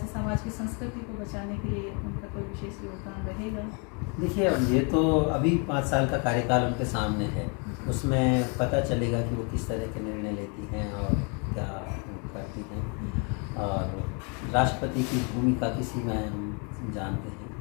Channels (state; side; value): quieter; right; 35.3 dB